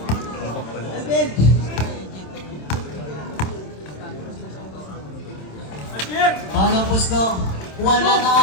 Palang pusto. Wala na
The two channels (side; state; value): right; late; 27 ms